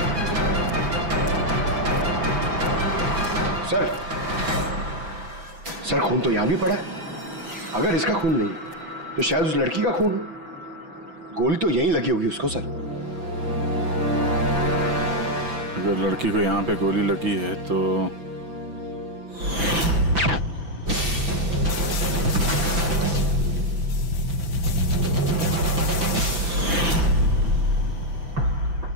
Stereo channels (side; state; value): left; late; 6.0 ms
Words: सर, खून तो यहां भी पड़ा है। अगर इसका खून नहीं तो शायद उस लड़की का खून। गोली तो यहीं लगी होगी उसको। सर, अगर लड़की को यहाँ पे गोली लगी है तो